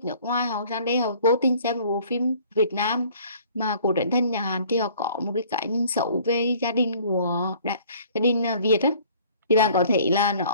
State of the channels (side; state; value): both; inverted; correlation -0.54